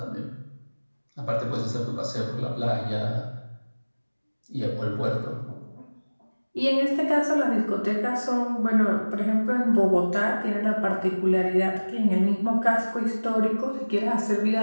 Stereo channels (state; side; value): inverted; both; correlation -1.00